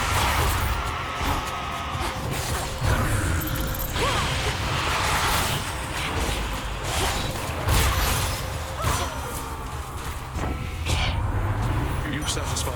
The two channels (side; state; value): both; identical; correlation 1.00